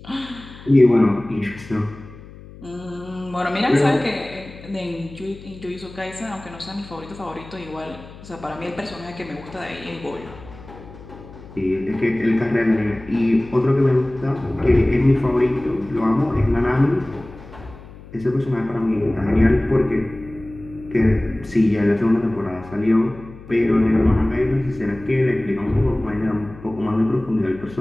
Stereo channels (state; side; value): noise; left; hum, 18 dB below the sound